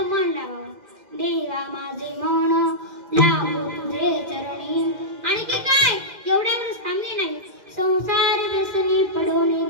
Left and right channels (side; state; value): left; late; 2.0 ms